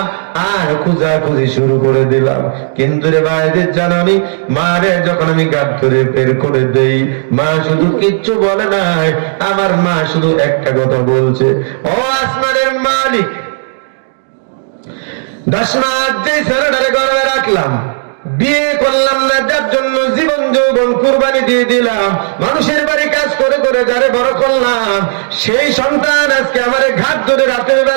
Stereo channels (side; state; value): left; silent; digital silence